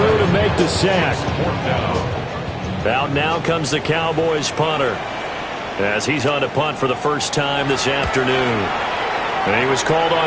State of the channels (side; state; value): both; identical; correlation 1.00